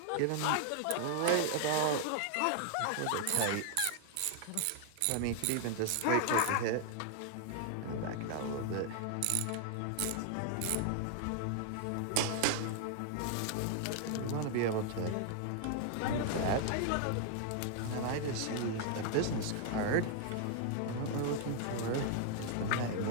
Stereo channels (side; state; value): both; different; correlation 0.00